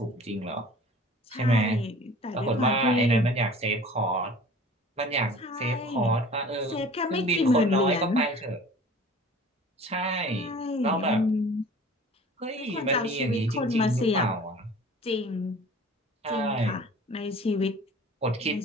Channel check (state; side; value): normal; both; correlation 0.45